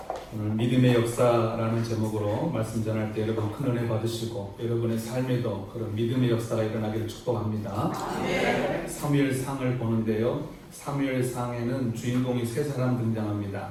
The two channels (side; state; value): both; identical; correlation 1.00